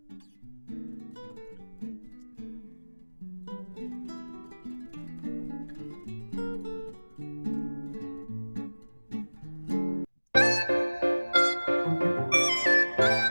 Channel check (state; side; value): inverted; both; correlation -1.00